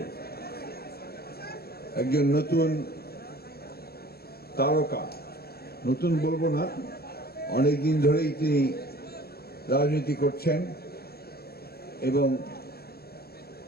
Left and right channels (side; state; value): right; late; 0.45 ms